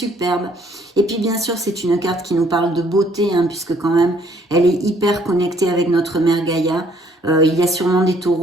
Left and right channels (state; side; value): normal; both; correlation 0.64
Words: Et puis bien sûr c'est une carte qui nous parle de beauté, hein, puisque quand même elle est hyper connectée avec notre mère Gaïa. Il y a sûrement des